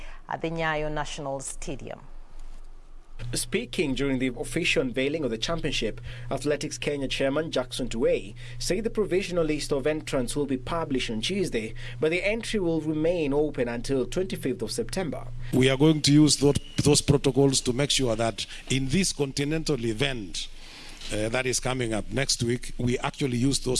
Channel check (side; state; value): both; identical; correlation 1.00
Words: at the Nyayo National Stadium. Speaking during the official unveiling of the championship, Athletics Kenya chairman Jackson Tuwei said the provisional list of entrants will be published on Tuesday, but the entry will remain open until 25th of September. We are going to use those protocols to make sure that in this continental event that is coming up next week, we actually use